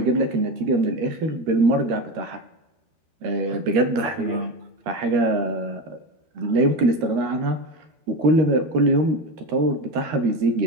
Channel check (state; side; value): late; left; 13 ms